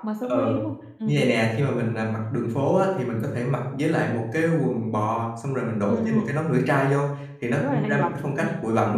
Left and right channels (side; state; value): both; identical; correlation 1.00